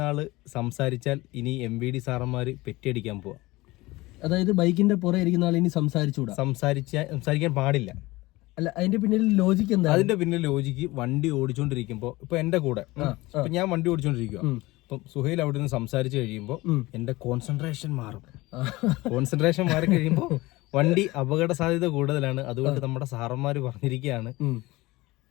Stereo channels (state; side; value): quieter; right; 20.5 dB